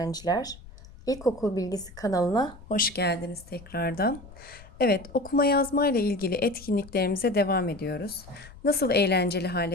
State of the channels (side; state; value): left; noise; rumble, 19 dB below the sound